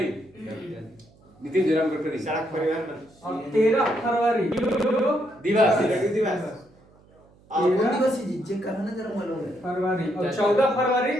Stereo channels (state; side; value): noise; right; hum, 29 dB below the sound